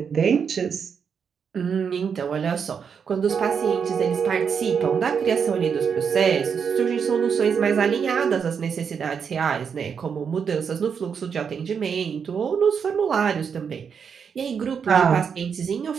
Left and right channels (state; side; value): quieter; left; 6.7 dB